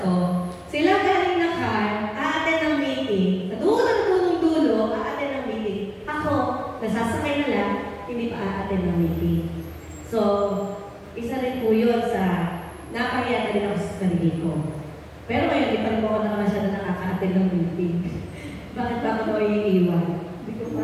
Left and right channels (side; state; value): both; identical; correlation 1.00